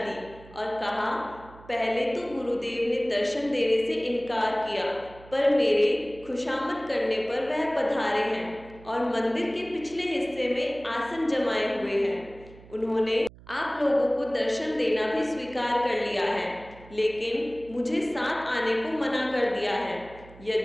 और कहा, पहले तो गुरुदेव ने दर्शन देने से इनकार किया, पर मेरे खुशामद करने पर वह पधारे हैं और मंदिर के पिछले हिस्से में आसन जमाए हुए हैं। उन्होंने आप लोगों को दर्शन देना भी स्वीकार कर लिया है, लेकिन मुझे साथ आने को मना कर दिया है।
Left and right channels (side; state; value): right; noise; hum, 21 dB below the sound